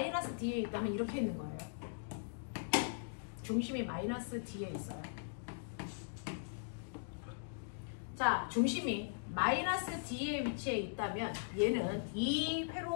D에 있다면 이렇게 있는 거예요. 중심이 마이너스 D에 있어요. 자, 중심이 마이너스 D에 위치해 있다면 얘는 이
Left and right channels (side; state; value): right; silent; digital silence